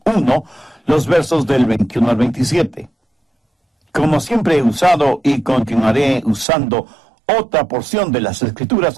1, los versos del 21 al 27. Como siempre he usado y continuaré usando otra porción de las Escrituras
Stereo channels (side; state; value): left; drops out; at 6.5 s